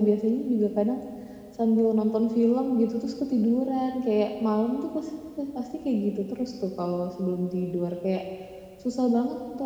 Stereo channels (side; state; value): both; identical; correlation 1.00